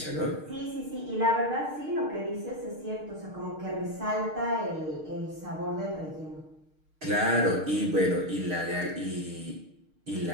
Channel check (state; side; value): late; left; 6.5 ms